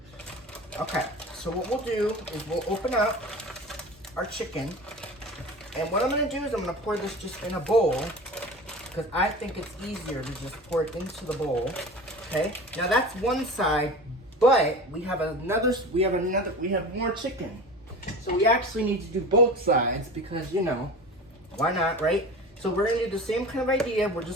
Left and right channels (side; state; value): both; normal; correlation 0.34